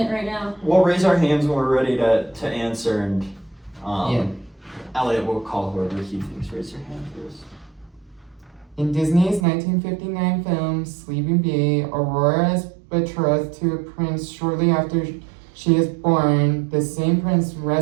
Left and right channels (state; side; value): drops out; left; at 9.4 s